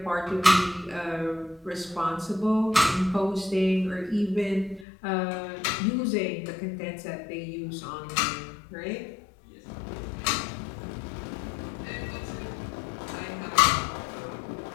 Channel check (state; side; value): drops out; right; at 4.9 s